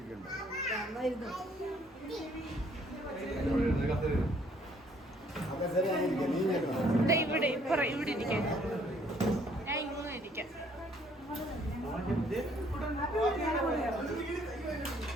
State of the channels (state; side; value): normal; both; correlation 0.63